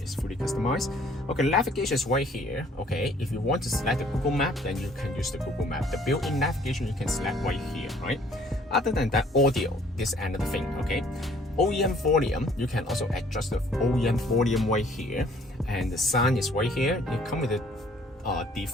fully customized. Okay, navigation is right here. Okay, if you want to select the Google Map, then you can use the Google Map. The built-in navigation you can select right here, right? Other than that, audio, this is another thing. Okay, OEM volume, you can also adjust the OEM volume right here, and the sound is right here. You come with the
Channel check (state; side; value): normal; both; correlation 0.59